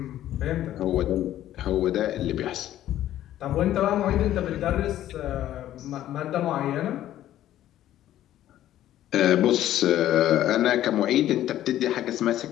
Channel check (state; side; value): quieter; right; 12.8 dB